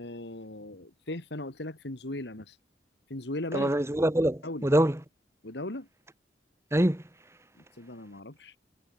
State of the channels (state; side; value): normal; both; correlation 0.80